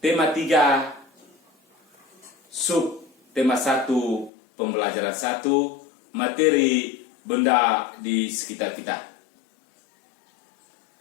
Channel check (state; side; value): drops out; right; at 4.3 s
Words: 3, tema 1, pembelajaran 1, materi benda di sekitar kita.